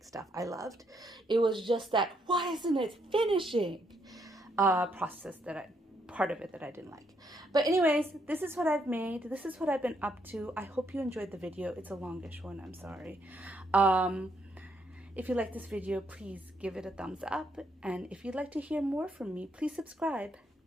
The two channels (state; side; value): normal; both; correlation 0.74